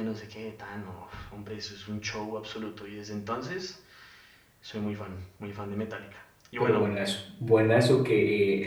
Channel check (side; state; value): both; identical; correlation 1.00